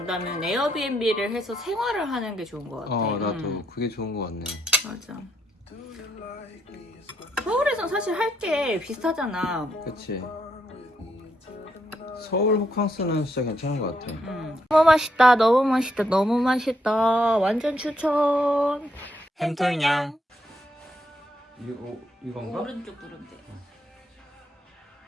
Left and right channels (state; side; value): normal; both; correlation 0.77